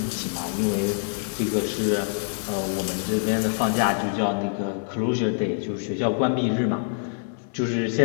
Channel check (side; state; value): right; silent; 60 dB below the other